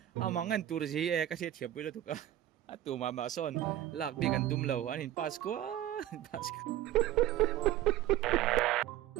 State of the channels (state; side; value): quieter; left; 13.2 dB